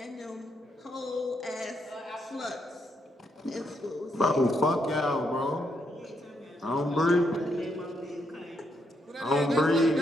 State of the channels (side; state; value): both; normal; correlation 0.78